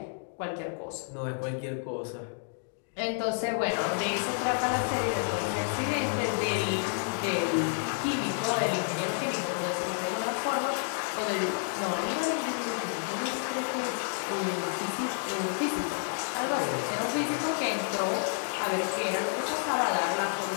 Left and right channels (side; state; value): right; silent; 56 dB below the other